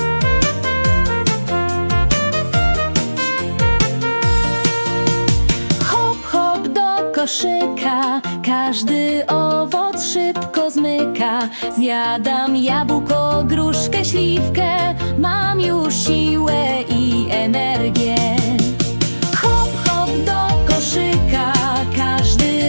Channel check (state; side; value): inverted; both; correlation -1.00